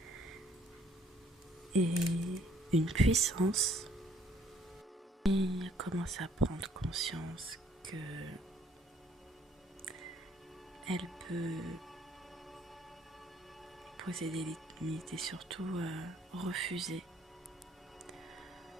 et une puissance. Et elle commence à prendre conscience que elle peut poser des limites et surtout refuser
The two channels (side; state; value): both; normal; correlation 0.62